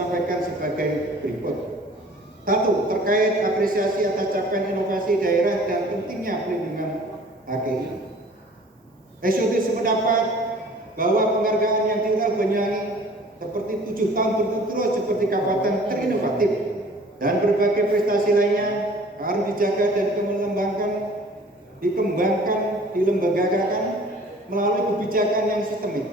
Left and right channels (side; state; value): both; normal; correlation 0.50